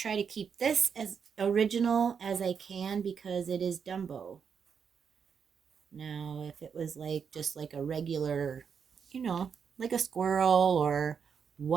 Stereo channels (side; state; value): left; quieter; 6.7 dB